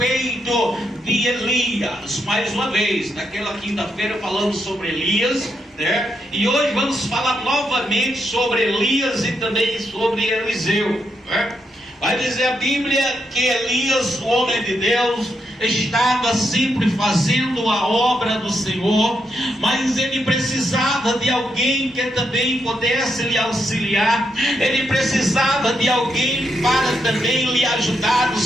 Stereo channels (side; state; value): both; normal; correlation 0.81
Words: de Elias. Mais uma vez, naquela quinta-feira falamos sobre Elias, né? E hoje vamos falar novamente sobre Elias e também sobre Eliseu, né? Vai dizer a Bíblia que Elias, o homem de Deus, estava sempre fazendo a obra do Senhor, mas ele precisava de alguém que também pudesse lhe auxiliar. Ele precisava de alguém para também lhe ajudar no